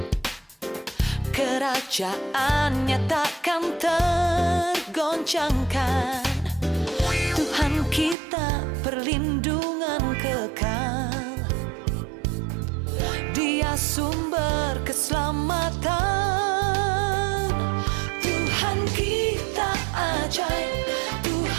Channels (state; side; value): drops out; left; at 8.2 s